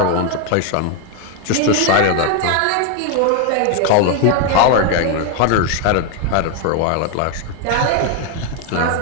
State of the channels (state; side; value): different; both; correlation 0.01